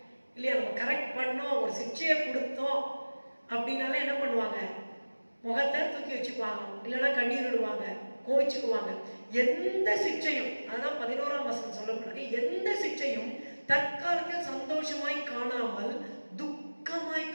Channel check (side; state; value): both; inverted; correlation -1.00